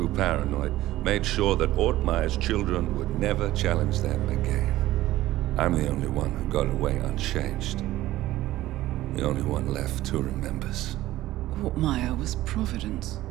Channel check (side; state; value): left; quieter; 15.7 dB